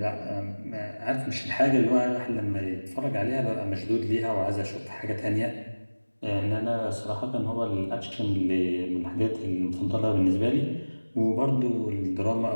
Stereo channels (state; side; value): inverted; both; correlation -1.00